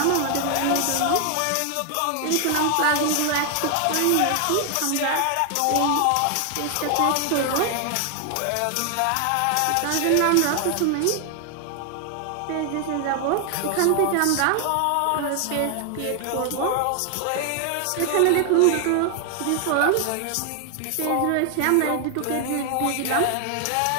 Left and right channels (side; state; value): both; different; correlation 0.00